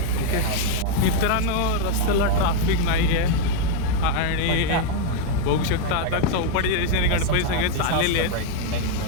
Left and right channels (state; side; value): different; both; correlation 0.01